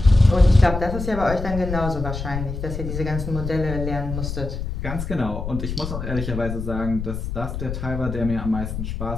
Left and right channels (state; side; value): noise; left; rumble, 6 dB below the sound